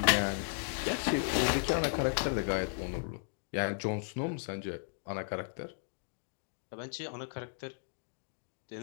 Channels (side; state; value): right; silent; digital silence